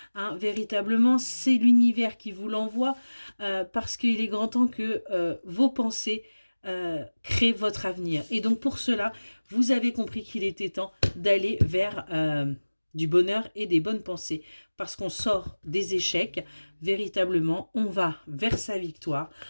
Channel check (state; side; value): inverted; both; correlation -1.00